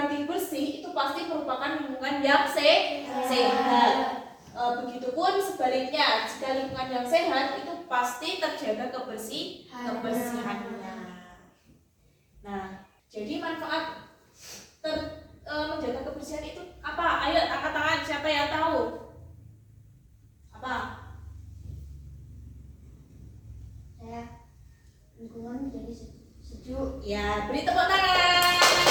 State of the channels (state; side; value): identical; both; correlation 1.00